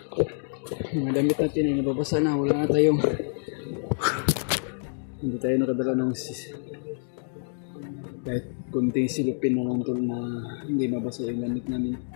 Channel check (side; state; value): right; silent; digital silence